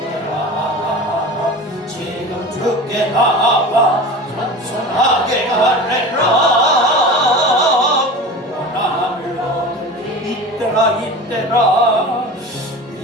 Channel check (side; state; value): both; normal; correlation 0.33